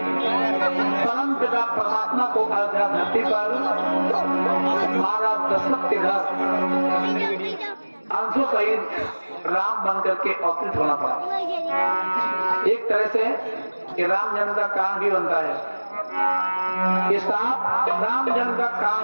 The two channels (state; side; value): inverted; both; correlation -1.00